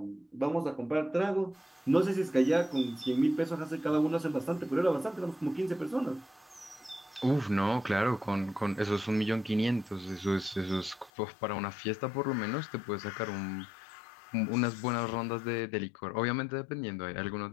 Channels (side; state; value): right; drops out; at 11.1 s